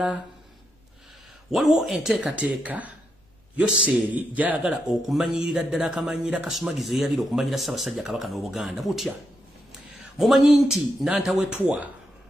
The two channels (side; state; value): both; normal; correlation 0.81